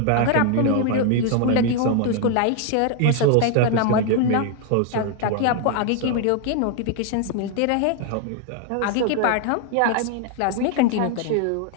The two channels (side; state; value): both; different; correlation 0.00